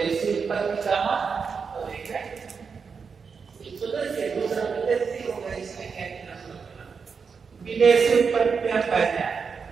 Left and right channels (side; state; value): left; quieter; 5.6 dB